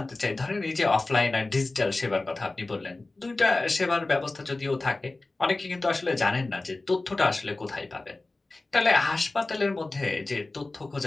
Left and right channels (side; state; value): right; quieter; 3.1 dB